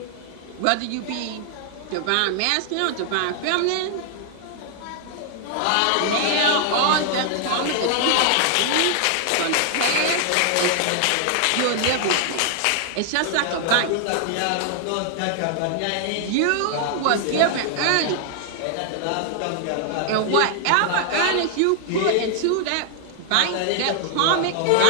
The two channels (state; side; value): different; both; correlation 0.00